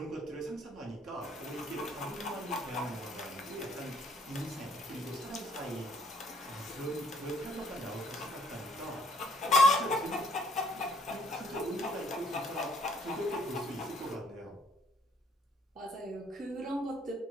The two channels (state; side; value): normal; both; correlation 0.65